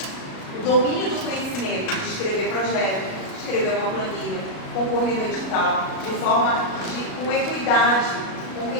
o domínio do conhecimento de escrever projeto, escrever uma planilha, concorrer no edital, de forma com equidade, com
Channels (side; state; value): right; late; 37 ms